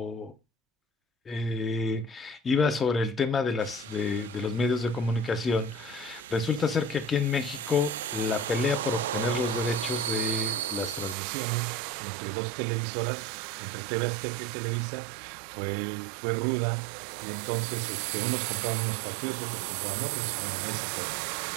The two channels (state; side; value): drops out; left; at 11.2 s